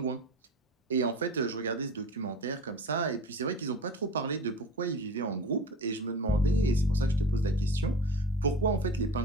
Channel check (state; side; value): normal; both; correlation 0.35